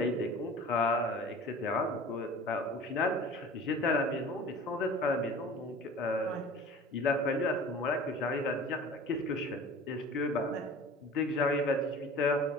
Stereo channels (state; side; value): normal; both; correlation 0.41